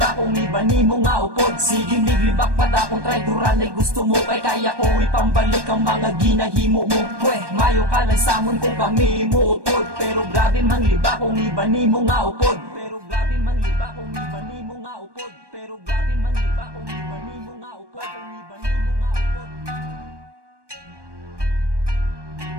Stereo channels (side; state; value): left; late; 1.2 ms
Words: kung iba ni mo nga upod. Sige mig, libak pa da kung traidoran ay gusto mo. Kay kaya ko ipambalik ang mga ginahimo mo. Pweh, mayo ka lang samon kung kami mo utod. Pero grabe mang liba kung iba ni mo nga upod. Pero grabe mang liba kung iba ni mo nga upod. Pero grabe mang liba kung iba ni mo nga upod.